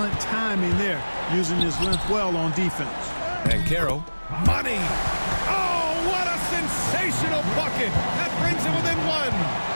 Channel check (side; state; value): both; inverted; correlation -1.00